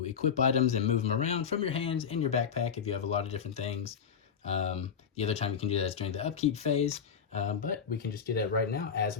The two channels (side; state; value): right; quieter; 7.1 dB